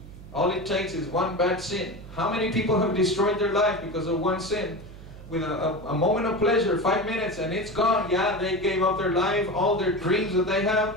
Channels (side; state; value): right; noise; hum, 16 dB below the sound